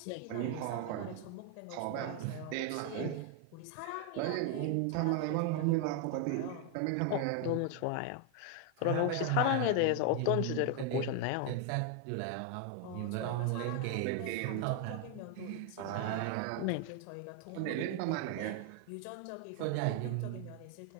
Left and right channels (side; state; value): both; different; correlation 0.01